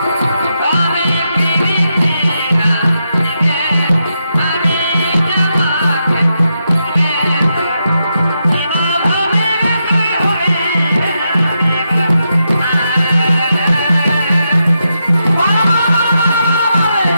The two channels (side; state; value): both; inverted; correlation -0.84